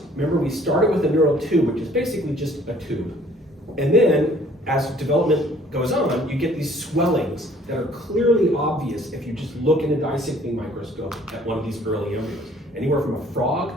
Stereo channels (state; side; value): normal; both; correlation 0.57